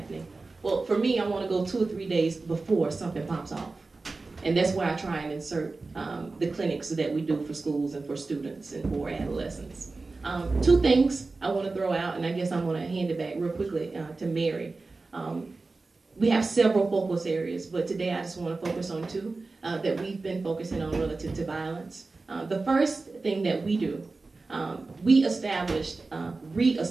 Well, for me, I want to go 2 or 3 days before something pops off. And that's where I try and insert the clinics that we do for schools and for students and for adolescents. 2 things I want to throw out, and I guess I'm going to hand it back real quickly to Mary. We have several focus areas, but today I just want to focus on 2 that we've been focusing on relative to violence. The first thing that we do, we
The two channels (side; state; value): left; quieter; 3.7 dB